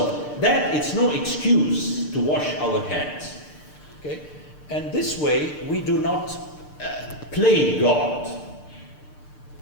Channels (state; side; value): late; right; 6.7 ms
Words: that it's no excuse to wash our hands. Okay? And this way we do not played God.